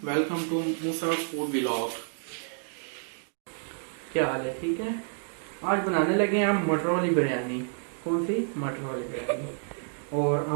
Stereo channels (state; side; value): silent; left; 58 dB below the other